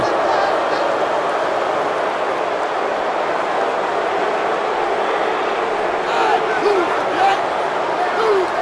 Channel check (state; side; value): identical; both; correlation 1.00